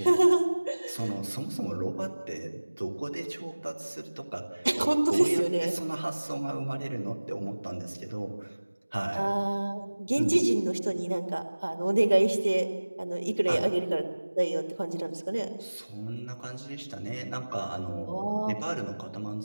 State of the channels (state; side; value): inverted; both; correlation -1.00